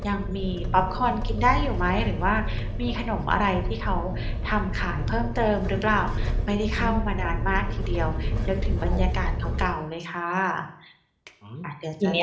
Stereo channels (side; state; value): both; identical; correlation 1.00